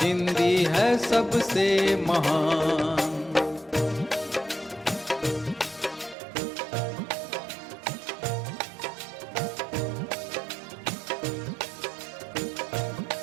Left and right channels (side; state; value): left; drops out; at 6.2 s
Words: हिंदी है सबसे महान।